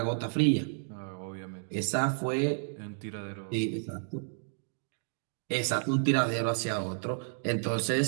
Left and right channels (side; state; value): left; silent; digital silence